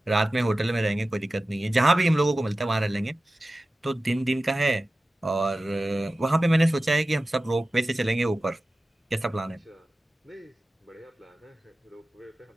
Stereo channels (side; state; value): both; normal; correlation 0.95